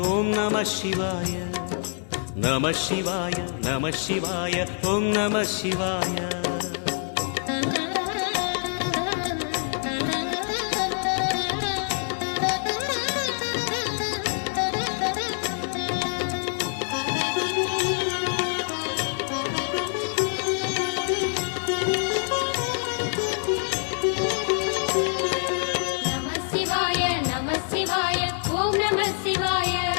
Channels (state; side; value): silent; right; 60 dB below the other